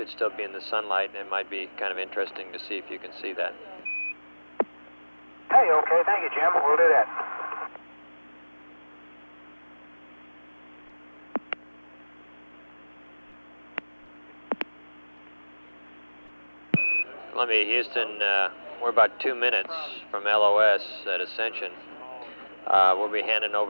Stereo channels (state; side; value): inverted; both; correlation -1.00